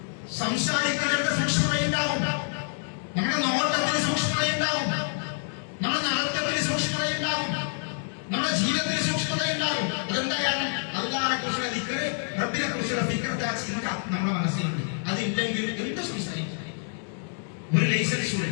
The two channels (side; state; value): right; silent; digital silence